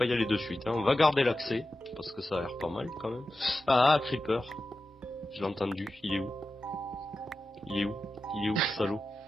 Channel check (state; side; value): normal; both; correlation 0.92